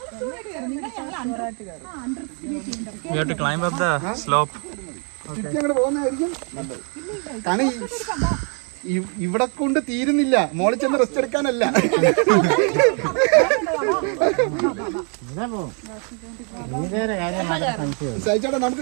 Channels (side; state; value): left; quieter; 39.2 dB